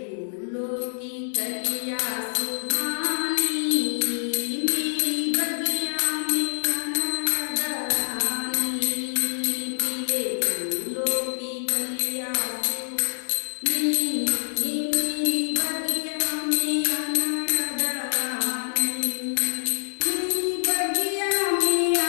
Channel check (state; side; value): silent; right; digital silence